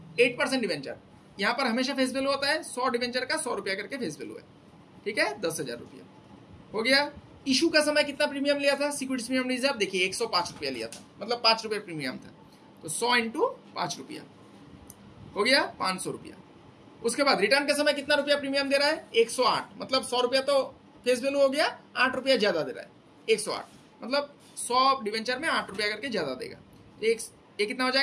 8% डिवेंचर, यहाँ पर हमेशा फेस वैल्यू होता है, 100 डिवेंचर का 100 रुपया करके फेस वैल्यू है, ठीक है, 10,000 रुपया हो गया। इशू का समय कितना प्रीमियम लिया था, सिक्योरिटीज प्रीमियम रिजर्व देखिए 105 रुपया लिया था, मतलब 5 रुपये प्रीमियम था। तो 100 इंटू 5 रुपया हो गया 500 रुपया। उसके बाद रिटर्न के समय कितना रुपया प्रीमियम दे रहा है, 108, मतलब 100 रुपया तो फेस वैल्यू हो गया, 8 रुपया ज्यादा दे रहा है, 108, मतलब 100 डिवेंचर में 8 रुपया करके ज्यादा देगा। ये कितना हो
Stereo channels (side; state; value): both; identical; correlation 1.00